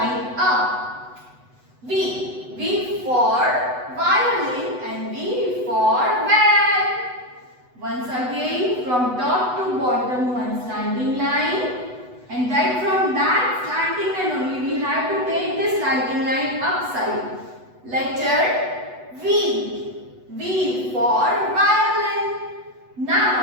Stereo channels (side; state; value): left; late; 8.0 ms